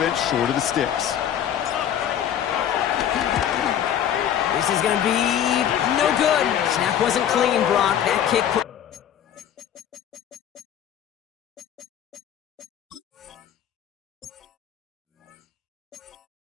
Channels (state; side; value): quieter; right; 9.9 dB